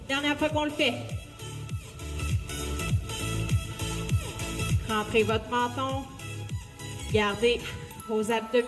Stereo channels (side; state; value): both; identical; correlation 1.00